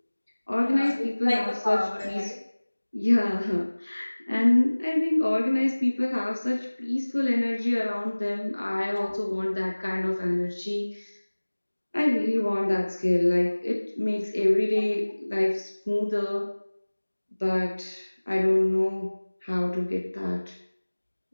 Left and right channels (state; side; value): inverted; both; correlation -1.00